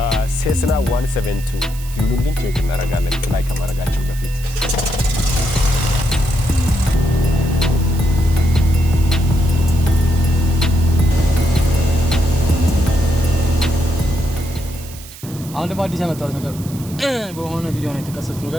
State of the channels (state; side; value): noise; right; hiss, 17 dB below the sound